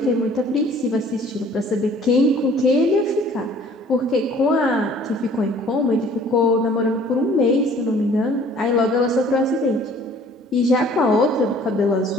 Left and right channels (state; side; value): normal; both; correlation 0.53